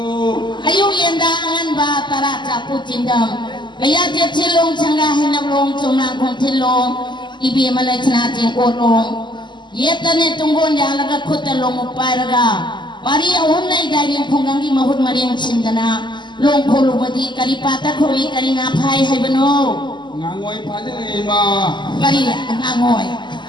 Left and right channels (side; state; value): right; late; 0.22 ms